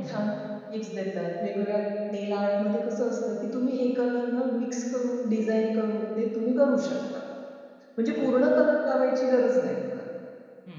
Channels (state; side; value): identical; both; correlation 1.00